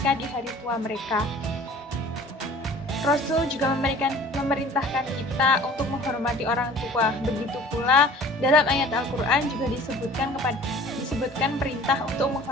di hari tua mereka. Rasul juga memerintahkan kita untuk menghormati orang tua. Begitu pula dalam ayat Al-Quran juga disebutkan perintah untuk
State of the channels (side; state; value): both; normal; correlation 0.47